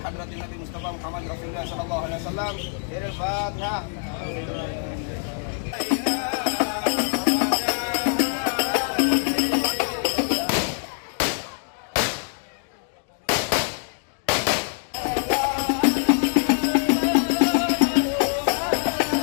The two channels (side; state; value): right; silent; digital silence